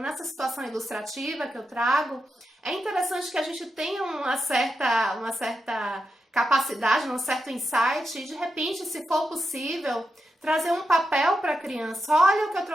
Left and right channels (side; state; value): both; normal; correlation 0.87